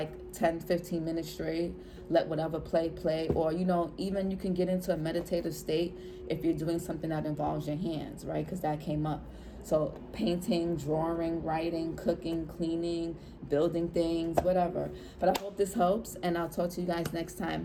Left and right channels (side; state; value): both; identical; correlation 1.00